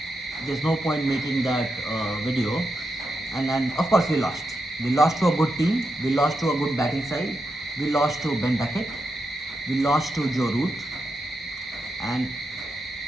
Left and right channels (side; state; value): both; normal; correlation 0.86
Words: there's no point making that video. And of course we lost. We lost to a good team. We lost to a good batting side. We lost to Ben Duckett. We lost to Joe Root. And